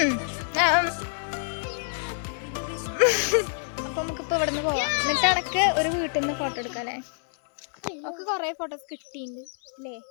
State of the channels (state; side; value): silent; right; 60 dB below the other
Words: അപ്പൊ നമുക്കിപ്പോ ഇവിടെ നിന്ന് പോവാം. എന്നിട്ട് അടക്ക് ഒരു വീട്ടിൽ നിന്ന് ഫോട്ടോ എടുക്കാം അല്ലേ? ഒക്കെ കൊറേ ഫോട്ടോസ് കിട്ടിയിട്ടുണ്ട് അല്ലേ?